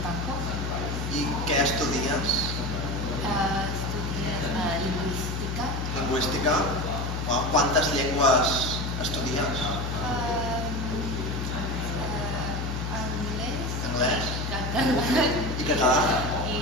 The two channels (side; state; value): left; noise; hum, 2 dB below the sound